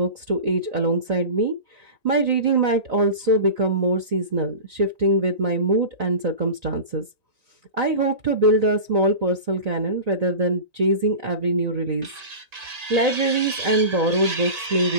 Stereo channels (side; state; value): left; late; 1.9 ms